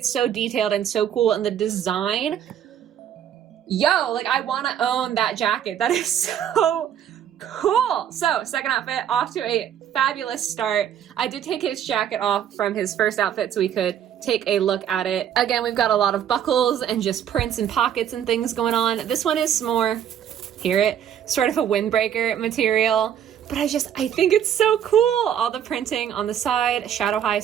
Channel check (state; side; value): quieter; left; 9.6 dB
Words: so detailed and so cool. And the design... Yo, like, I want to own that jacket. That is so cool. So, second outfit, off to a fabulous start. I did take his jacket off from his first outfit so we could take a look at it. Again, we've got a lot of buckles and just prints and pockets and things going on. This one is more, hear it, sort of a windbreaker material. But I think it's so cool. All the printing on the side, Shadow High